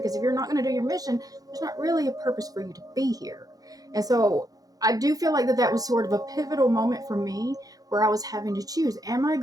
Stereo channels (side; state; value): left; late; 0.18 ms